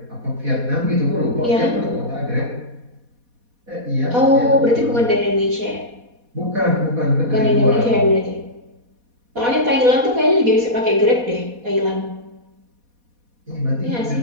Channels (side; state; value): left; late; 4.2 ms